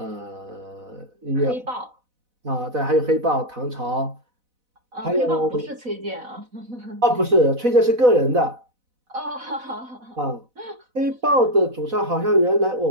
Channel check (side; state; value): left; late; 4.0 ms